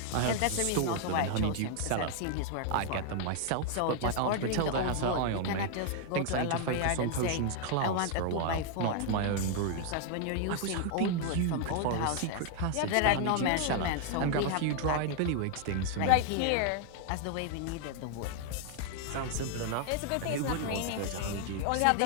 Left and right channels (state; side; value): different; both; correlation 0.00